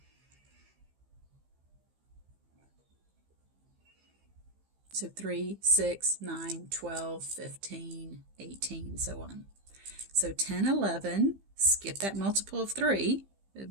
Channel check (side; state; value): left; late; 15 ms